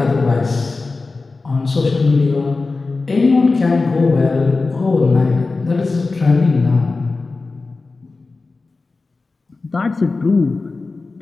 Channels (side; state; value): right; quieter; 3.8 dB